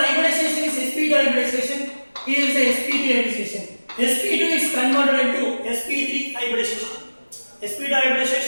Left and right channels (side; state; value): both; inverted; correlation -1.00